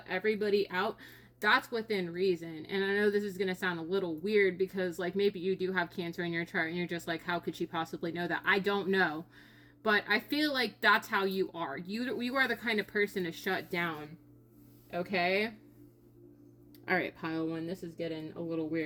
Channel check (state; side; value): identical; both; correlation 1.00